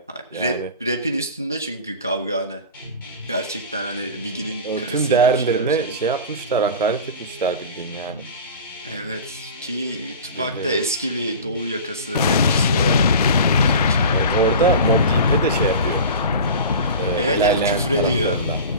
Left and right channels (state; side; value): inverted; both; correlation -0.33